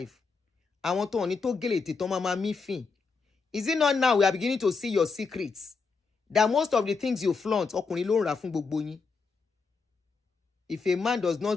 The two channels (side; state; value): right; quieter; 4.7 dB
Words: I want to only to get it to mama mi fin. Is it not now we are beginning to see your secrets? That most of the things you flaunt, ọkùnrin ló ń rà fún gbogbo yín. If a man does